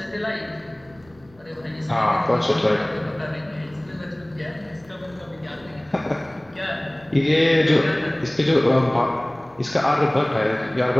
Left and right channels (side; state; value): left; noise; rumble, 28 dB below the sound